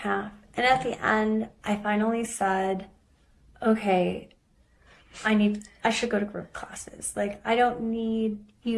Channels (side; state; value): both; identical; correlation 1.00